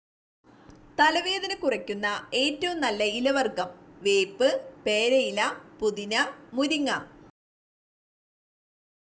തലവേദന കുറയ്ക്കുന്ന ഏറ്റവും നല്ല ഇലവർഗം: വേപ്പ്, പേരയില, പുതിന, മുരിങ്ങ.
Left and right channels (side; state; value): both; identical; correlation 1.00